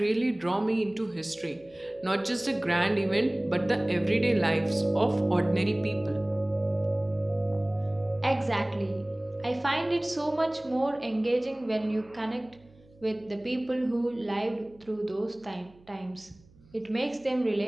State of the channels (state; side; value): noise; right; hum, 28 dB below the sound